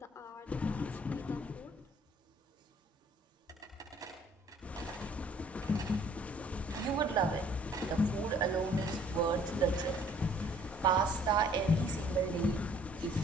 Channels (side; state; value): both; normal; correlation 0.58